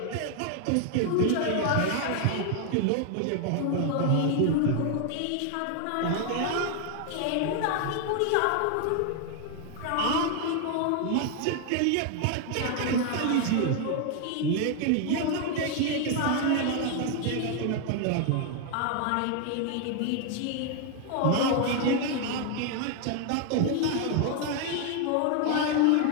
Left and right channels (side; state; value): both; different; correlation 0.00